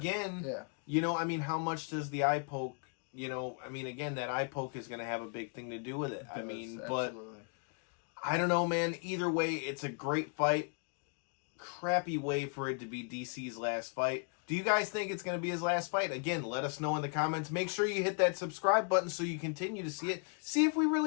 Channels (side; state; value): right; quieter; 39.0 dB